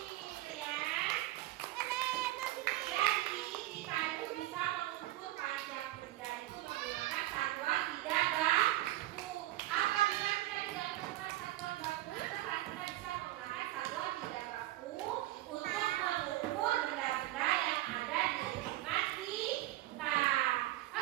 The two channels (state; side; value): quieter; left; 16.4 dB